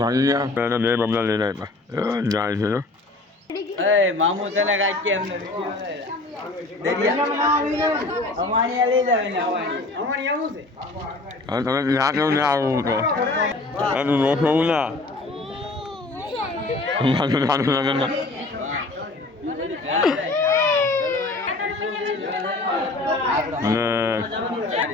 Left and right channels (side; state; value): right; quieter; 3.1 dB